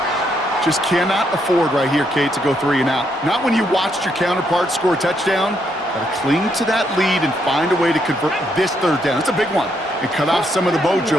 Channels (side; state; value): both; normal; correlation 0.76